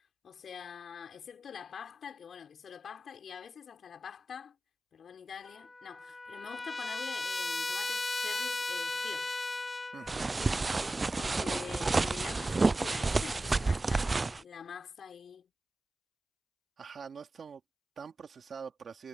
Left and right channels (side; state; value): both; normal; correlation 0.95